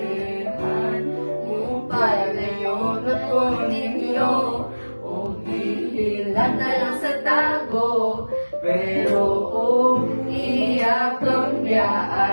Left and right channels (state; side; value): inverted; both; correlation -1.00